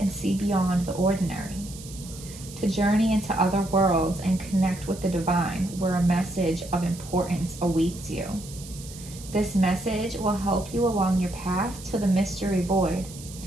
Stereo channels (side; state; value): right; noise; hiss, 16 dB below the sound